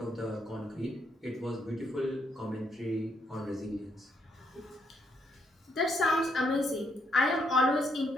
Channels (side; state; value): both; normal; correlation 0.76